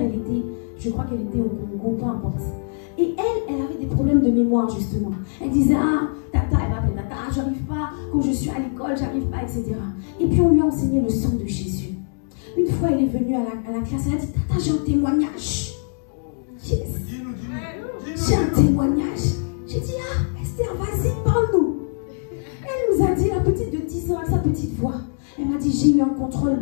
je crois qu'elle était au Congo, peu importe. Et elle avait des problèmes de mémoire, justement. Elle disait, ah, tata, elle m'appelle tata, j'arrive pas, quand je suis à l'école, j'arrive pas, etc. Et puis on lui a enseigné le sang de Jésus. Une fois, elle est venue à la classe, elle a dit, tata, j'ai un témoignage. Yes. J'ai un témoignage. J'ai dit, ah, Esther, vas-y, parle-nous. Elle nous a dit, la petite de 10 ans, avec sa petite voix. Elle m'a dit, j'ai eu un contrôle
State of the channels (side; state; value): right; silent; 64 dB below the other